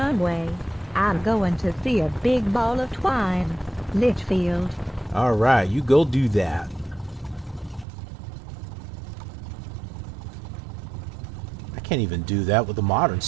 I'm going to see a big ball of twine. Litchfield. Alright, you go do that. I can't even do that with the modern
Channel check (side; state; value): left; drops out; at 7.9 s